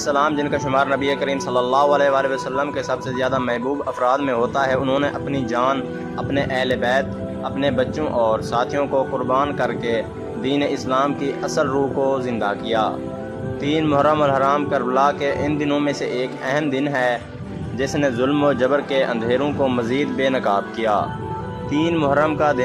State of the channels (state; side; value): identical; both; correlation 1.00